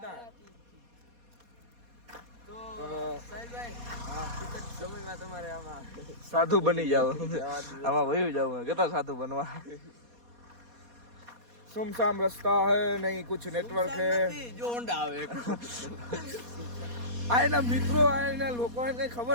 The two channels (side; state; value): left; late; 4.2 ms